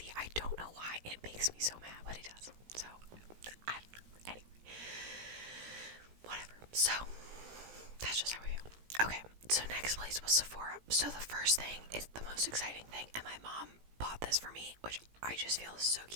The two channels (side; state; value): left; late; 17 ms